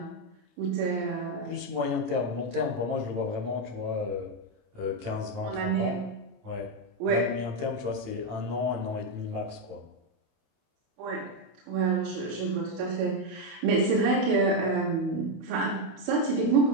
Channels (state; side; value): late; left; 28 ms